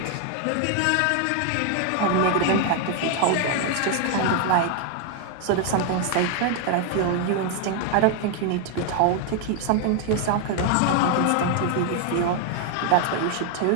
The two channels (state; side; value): different; both; correlation 0.00